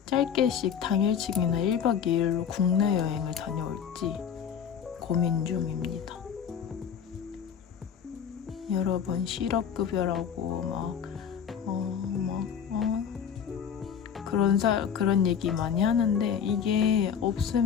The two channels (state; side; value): quieter; right; 7.8 dB